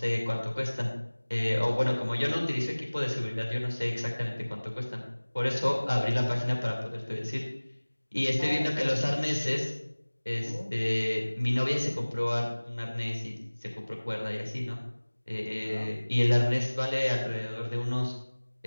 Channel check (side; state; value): both; inverted; correlation -1.00